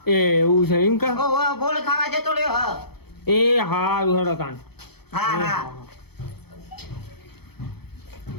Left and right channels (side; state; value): right; late; 0.97 ms